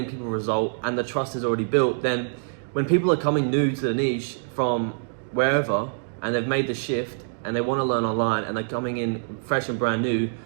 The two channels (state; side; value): silent; left; digital silence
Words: people result and the trust is already built, then when people are coming new to the niche from wherever and they've made the shift and they want to learn online and they're coming in fresh and brand new,